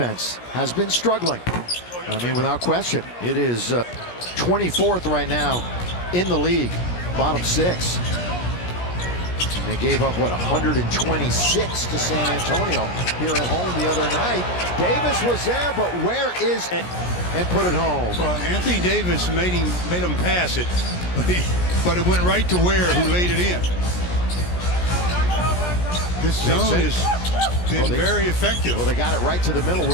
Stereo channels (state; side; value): late; right; 17 ms